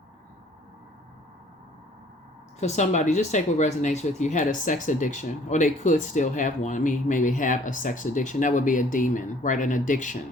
For somebody, just take what resonates with you, had a sex addiction, or they could still have one. I mean, maybe have a sex addiction. That would be a demon, right? An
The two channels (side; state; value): both; normal; correlation 0.56